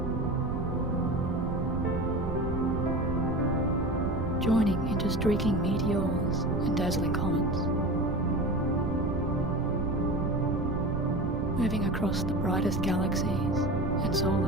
Joining into streaking meteors and dazzling comets. Moving across the brightest galaxies and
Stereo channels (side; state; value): right; noise; rumble, 4 dB below the sound